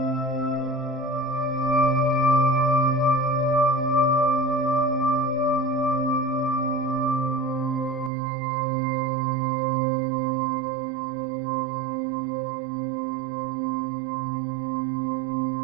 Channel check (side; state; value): left; drops out; at 8.1 s